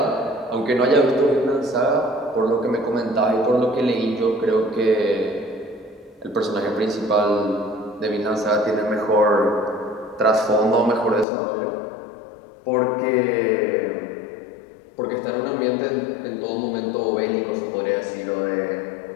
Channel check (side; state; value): right; drops out; at 11.2 s